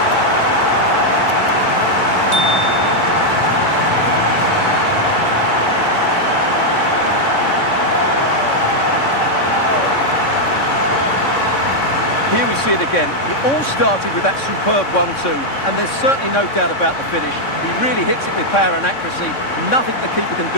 Here we see it again. It all started with that superb 1-2, and there's certainly no doubt about the finish. He really hits it with power and accuracy. Nothing the keeper can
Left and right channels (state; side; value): late; right; 3.6 ms